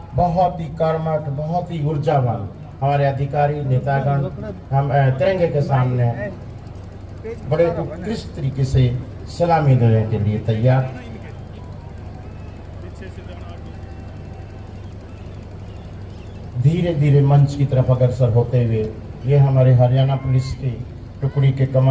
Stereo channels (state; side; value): identical; both; correlation 1.00